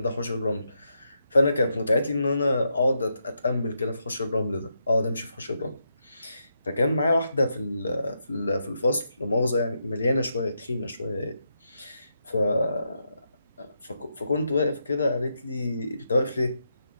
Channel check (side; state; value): both; inverted; correlation -0.82